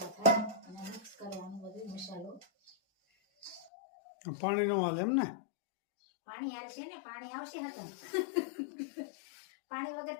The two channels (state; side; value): drops out; right; at 3.7 s